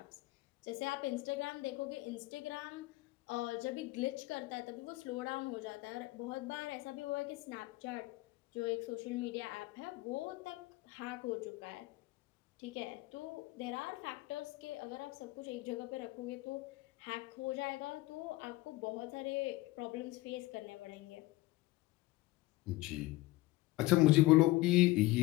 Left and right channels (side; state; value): right; quieter; 19.3 dB